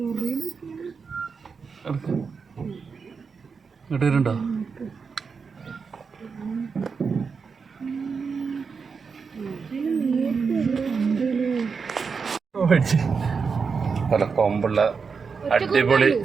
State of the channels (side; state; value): left; quieter; 5.4 dB